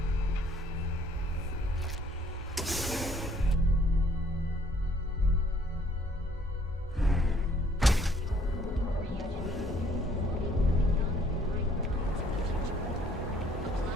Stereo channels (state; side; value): normal; both; correlation 0.62